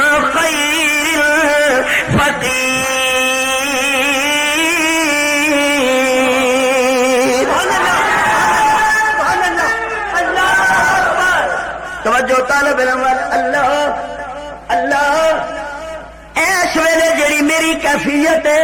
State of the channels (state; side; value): identical; both; correlation 1.00